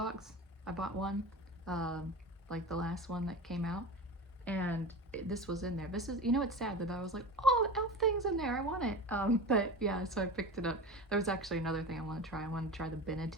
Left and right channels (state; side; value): normal; both; correlation 0.30